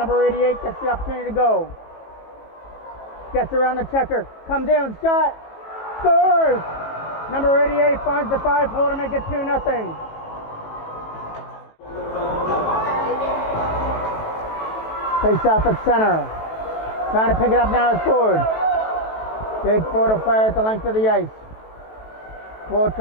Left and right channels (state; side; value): late; right; 18 ms